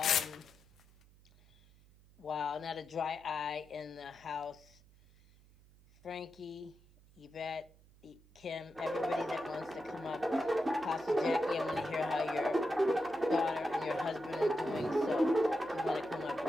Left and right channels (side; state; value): right; noise; hum, 27 dB below the sound